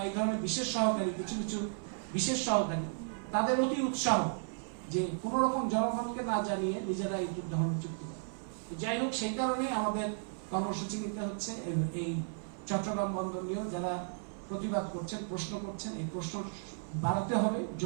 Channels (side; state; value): left; silent; 55 dB below the other